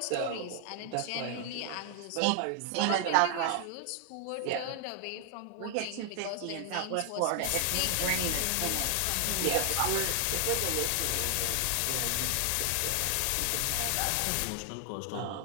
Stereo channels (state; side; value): different; both; correlation 0.00